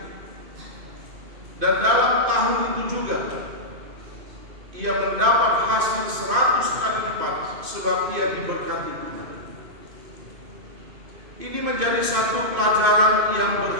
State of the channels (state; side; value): late; left; 2.5 ms